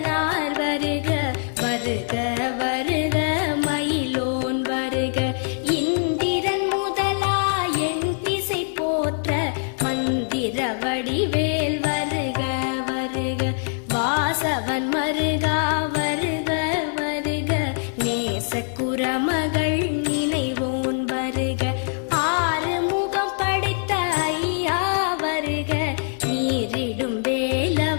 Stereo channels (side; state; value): right; silent; 63 dB below the other